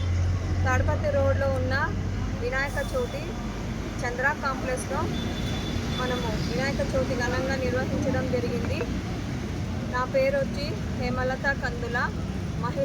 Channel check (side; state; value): both; identical; correlation 1.00